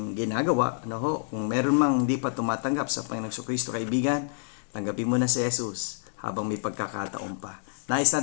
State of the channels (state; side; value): silent; right; digital silence